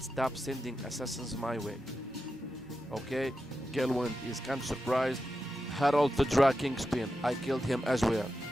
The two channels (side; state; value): both; normal; correlation 0.90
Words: stop sending assassins my way. Okay, Galewind is kind of surprised. Harold the Dra Kingspin, I killed him as well.